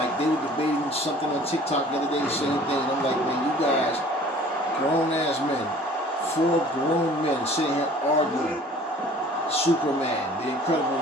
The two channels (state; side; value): normal; both; correlation 0.50